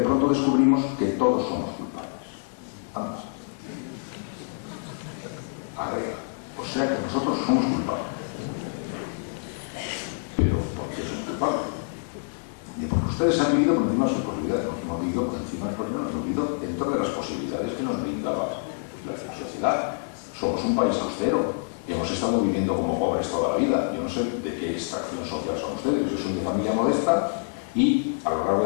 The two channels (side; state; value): right; silent; digital silence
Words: pronto descubrimos que todos somos culpables. Vamos. Agrega. O sea que nosotros somos culpables. Pero ¿por qué somos culpables? Porque ustedes han vivido por encima de sus posibilidades, no hemos vivido por encima de sus posibilidades, hemos vivido dentro de las posibilidades que nos brindaba la sociedad. Somos un país austero, hemos estado viviendo como pobres toda la vida. Yo no sé de qué extracción social son ustedes, yo soy de familia modesta y a lo largo